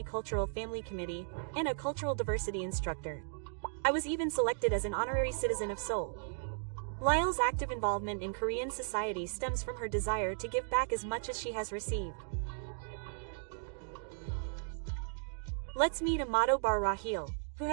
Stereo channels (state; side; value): silent; left; digital silence